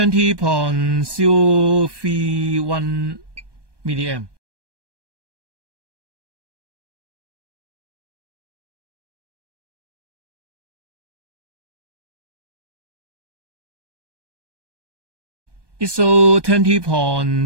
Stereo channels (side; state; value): left; late; 1.2 ms